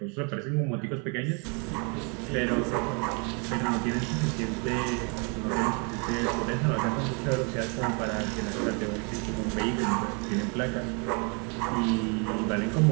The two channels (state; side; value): quieter; left; 34.8 dB